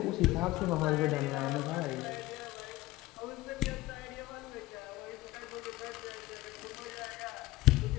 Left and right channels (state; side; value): quieter; right; 18.5 dB